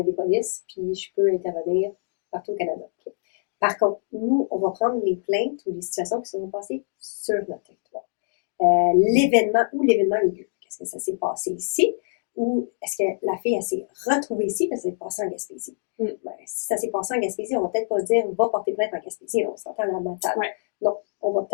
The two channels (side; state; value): right; silent; digital silence